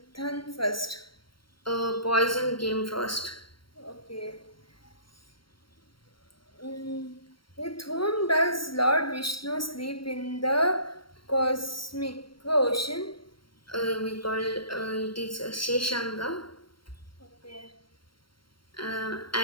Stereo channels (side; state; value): right; late; 0.73 ms